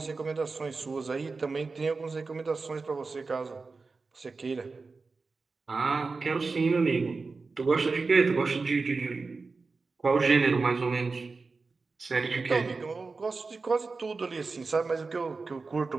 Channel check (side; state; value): left; quieter; 4.1 dB